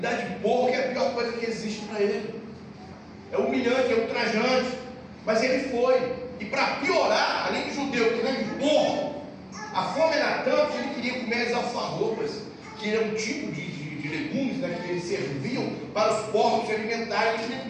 de porco é a pior coisa que existe para ele. É humilhante, é ultrajante. Mas ele foi. E para piorar, além de judeu que nem de porco, a fome era tanto que ele queria comer as alfarrobas, que era um tipo de legumes, né, que eles serviam para os porcos se alimentarem. Ele queria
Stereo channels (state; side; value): identical; both; correlation 1.00